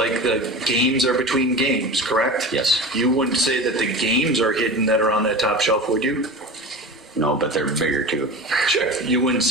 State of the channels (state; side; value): normal; both; correlation 0.31